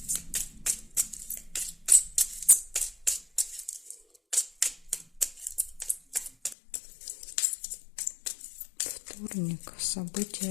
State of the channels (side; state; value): right; drops out; at 6.6 s